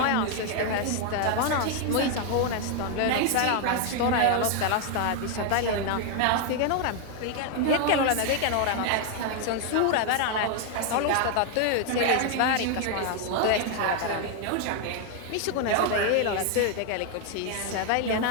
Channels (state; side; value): different; both; correlation 0.00